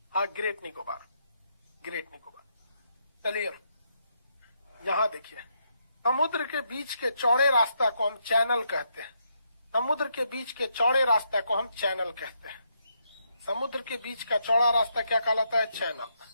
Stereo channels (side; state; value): both; inverted; correlation -0.78